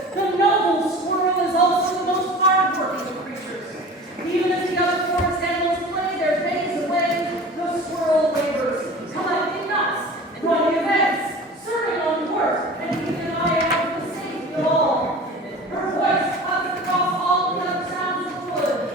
the noble squirrel is also the most hard-working of creatures. Even as the other forest animals play their days away, the squirrel labors, collecting nuts, running events, serving on court, and keeping an eye out for the safety of all. Her voice cuts across all the other sounds of the wood,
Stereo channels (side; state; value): both; normal; correlation 0.39